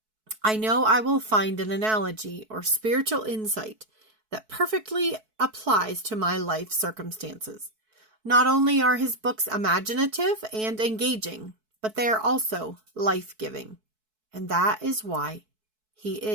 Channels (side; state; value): left; late; 4.6 ms